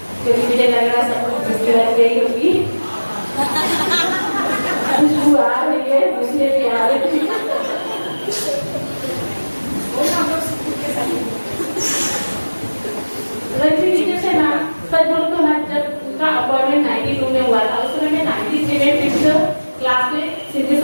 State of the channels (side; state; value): both; inverted; correlation -1.00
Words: क्योंकि मुझे लग रहा है सब कुछ लग गई होगी। खुशबू आ रही है, मुझे भी आ रही है। रजनी से ना सच बोलो तो ना, जब उनका अपॉइंटमेंट 92 में हुआ था, उस समय मैं 93 में 5th क्लास में सिंधी